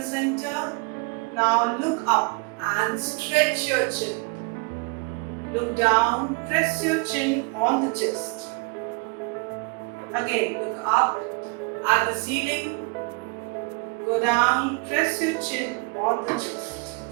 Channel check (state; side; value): quieter; left; 31.1 dB